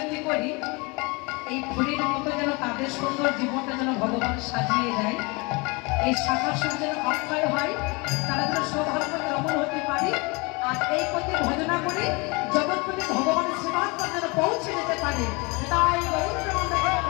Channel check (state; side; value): quieter; right; 27.9 dB